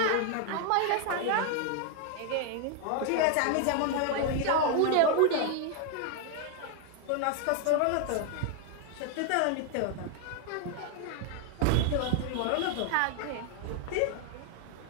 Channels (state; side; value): different; both; correlation 0.00